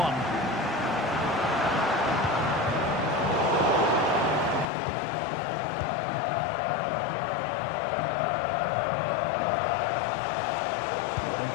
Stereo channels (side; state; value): right; drops out; at 4.7 s